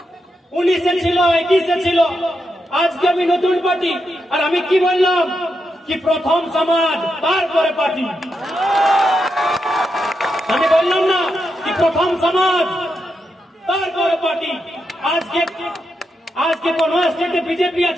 19-এ ছিল, 21-এ ছিল, আজকে আমি নতুন পার্টি, আর আমি কি বললাম কি প্রথম সমাজ তারপরে পার্টি, আমি বললাম না কি প্রথম সমাজ তারপরে পার্টি। আজকে কোন স্টেটে বিজেপি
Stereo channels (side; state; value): both; normal; correlation 0.84